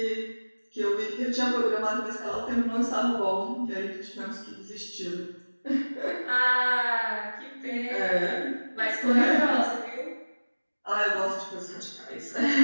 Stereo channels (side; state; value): both; inverted; correlation -1.00